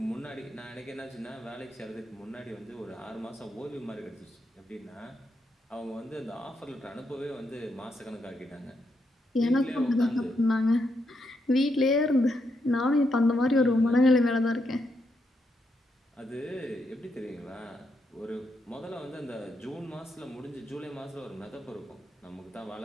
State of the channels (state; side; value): normal; both; correlation 0.80